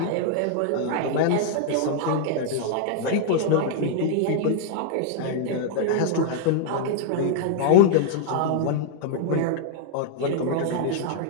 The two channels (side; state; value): both; different; correlation -0.01